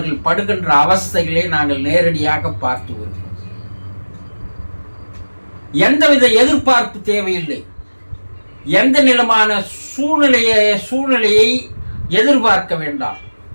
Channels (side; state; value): both; inverted; correlation -1.00